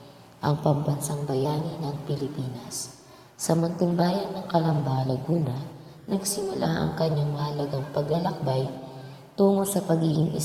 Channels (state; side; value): identical; both; correlation 1.00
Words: ang pambansang bayani ng Pilipinas. Sa munting bayan ng Calamba, Laguna, nagsimula ang kanyang mahalagang paglalakbay tungo sa pagiging